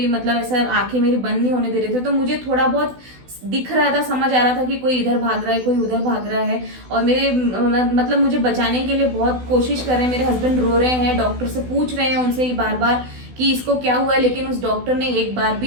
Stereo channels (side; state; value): left; late; 16 ms